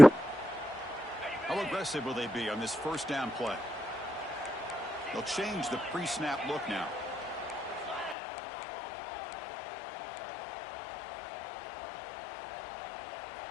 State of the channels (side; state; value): right; drops out; at 8.2 s